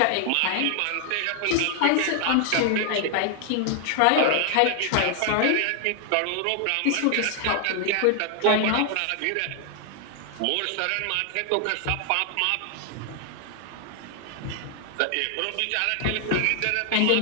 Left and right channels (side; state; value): both; different; correlation 0.00